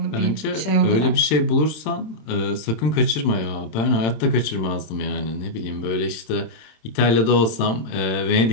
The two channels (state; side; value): late; right; 27 ms